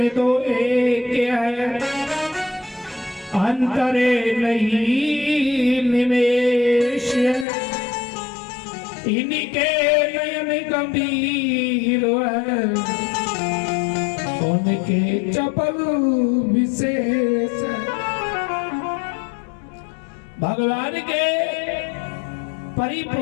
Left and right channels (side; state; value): right; drops out; at 7.5 s